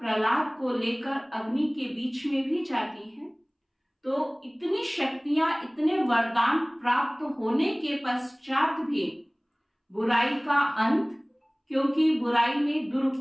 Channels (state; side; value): identical; both; correlation 1.00